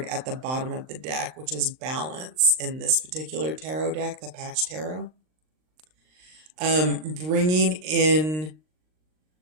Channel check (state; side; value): late; left; 39 ms